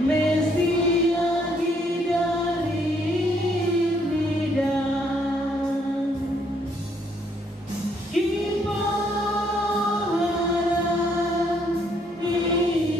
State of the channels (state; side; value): normal; both; correlation 0.69